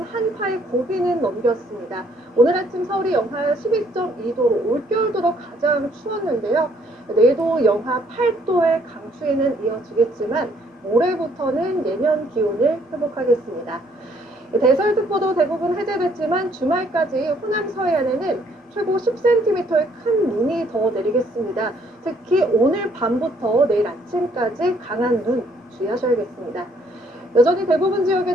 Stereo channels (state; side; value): normal; both; correlation 0.65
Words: 한파의 고비는 넘겼습니다. 오늘 아침 서울이 영하 12.2도로 올겨울 들어 가장 추웠는데요. 내일도 영하 8도의 강추위는 이어지겠지만 모레부터는 예년 기온을 회복하겠습니다. 대설특보도 대부분 해제됐지만 주말까지 호남 서해안에는 최고 10cm의 큰 눈이 더 내리겠습니다. 특히 오늘 밤부터 내일 아침까지 강한 눈 주의하셔야겠습니다. 여전히 대부분